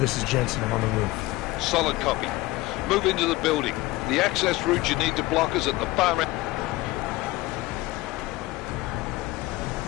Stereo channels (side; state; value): right; quieter; 19.3 dB